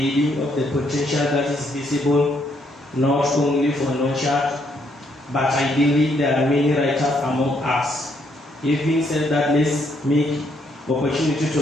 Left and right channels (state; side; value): normal; both; correlation 0.72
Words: of the potential that is visible not only for Noshad, but I believe there are many writers among us. Having said that, let's make opportunity to